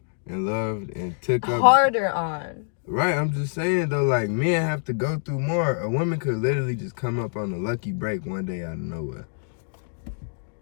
and loved and took up. Harder on. Right, I'm just saying though, like men have to go through more. A woman could literally just come up on a lucky break one day out of nowhere.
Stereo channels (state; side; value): silent; right; digital silence